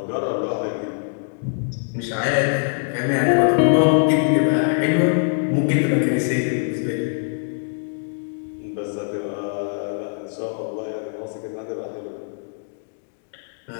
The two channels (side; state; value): right; silent; digital silence